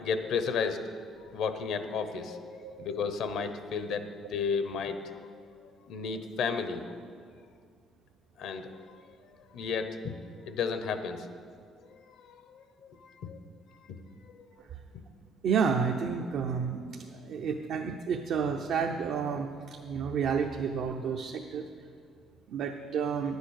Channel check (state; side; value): normal; both; correlation 0.53